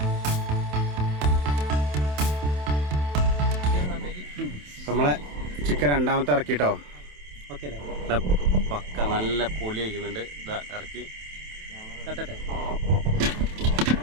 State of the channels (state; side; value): late; left; 27 ms